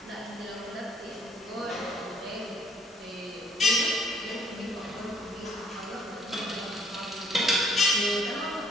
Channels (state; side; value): normal; both; correlation 0.62